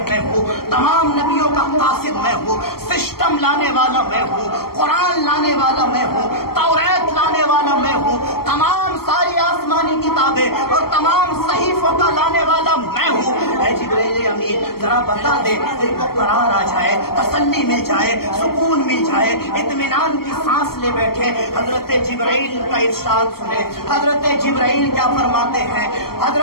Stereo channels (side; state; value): right; late; 0.94 ms